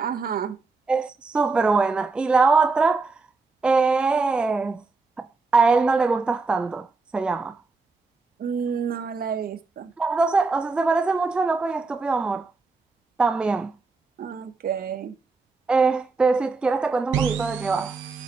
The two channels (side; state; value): left; quieter; 4.1 dB